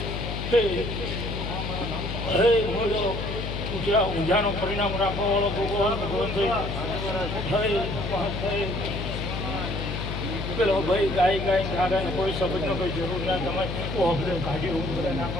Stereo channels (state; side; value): noise; left; hum, 4 dB below the sound